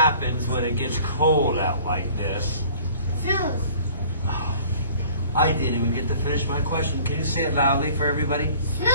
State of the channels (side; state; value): both; inverted; correlation -0.50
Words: when it gets cold out like this? Snows. Oh, I didn't even get to finish my question. Can you say it loudly for everybody?